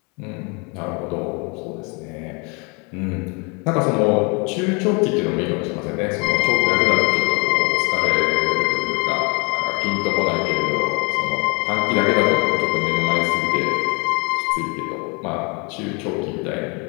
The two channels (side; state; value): right; quieter; 31.9 dB